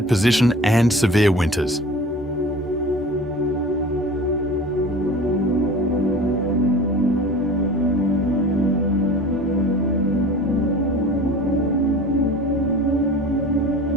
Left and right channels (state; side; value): normal; both; correlation 0.39